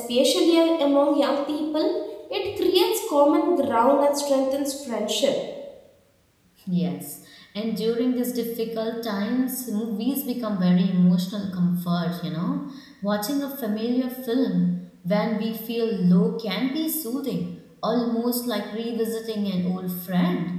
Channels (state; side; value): identical; both; correlation 1.00